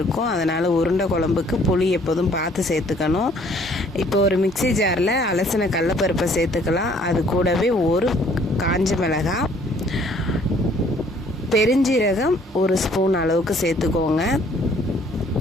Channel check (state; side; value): normal; both; correlation 0.60